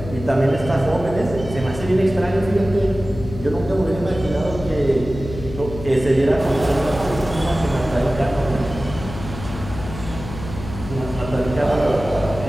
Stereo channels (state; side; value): noise; left; hum, 11 dB below the sound